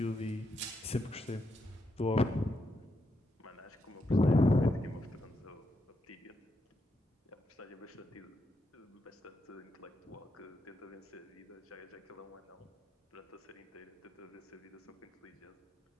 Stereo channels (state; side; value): normal; both; correlation 0.81